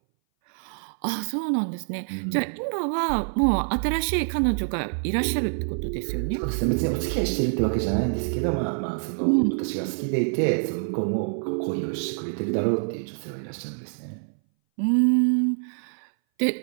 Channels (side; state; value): left; silent; 60 dB below the other